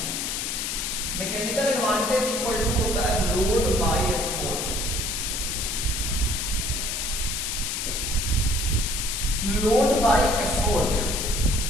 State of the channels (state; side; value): noise; left; hiss, 2 dB below the sound